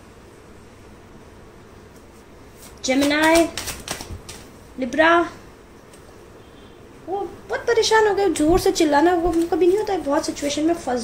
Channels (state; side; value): identical; both; correlation 1.00